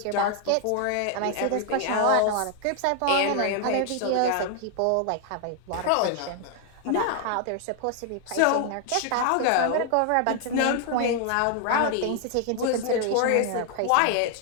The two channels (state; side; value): different; both; correlation 0.00